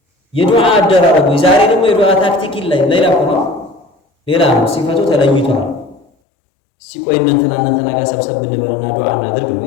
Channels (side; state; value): right; drops out; at 6.1 s